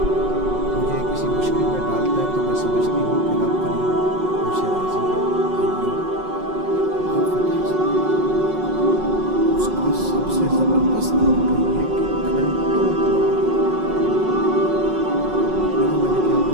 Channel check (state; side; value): late; left; 5.4 ms